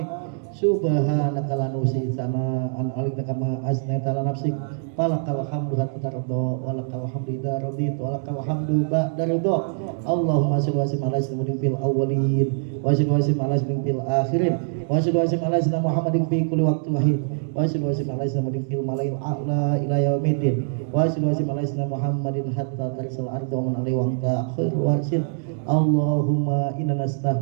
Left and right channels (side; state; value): left; silent; digital silence